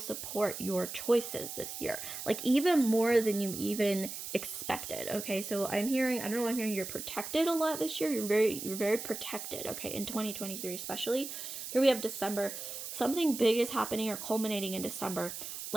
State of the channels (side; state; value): right; noise; hiss, 8 dB below the sound